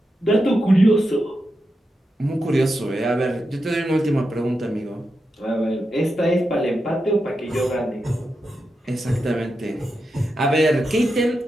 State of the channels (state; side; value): normal; both; correlation 0.88